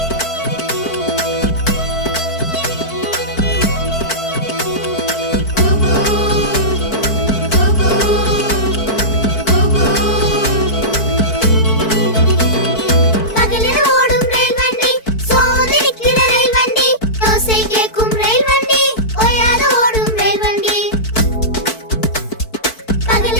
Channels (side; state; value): right; late; 4.5 ms